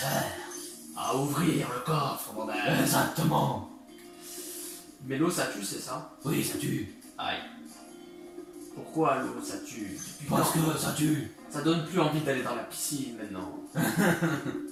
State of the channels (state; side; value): identical; both; correlation 1.00